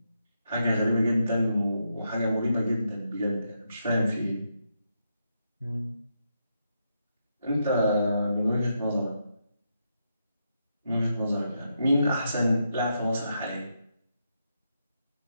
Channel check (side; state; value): both; inverted; correlation -0.82